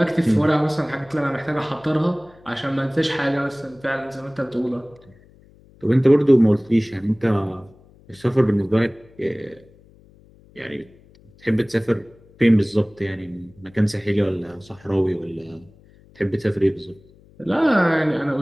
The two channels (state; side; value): noise; left; hum, 27 dB below the sound